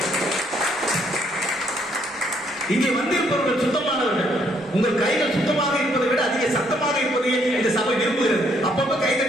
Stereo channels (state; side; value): normal; both; correlation 0.69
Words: இங்கே வந்திருப்பவர்கள் சுத்தமானவர்கள். உங்கள் கைகள் சுத்தமாக இருப்பதை விட அதிக சத்தமாக இருப்பதையே இந்த சபை விரும்புகிறது. அப்பப்ப